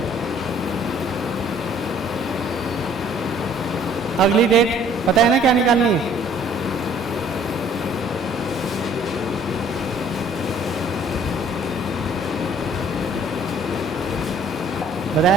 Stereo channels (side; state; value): both; normal; correlation 0.57